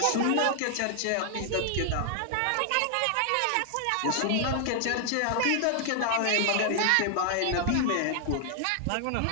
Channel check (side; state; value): both; different; correlation 0.00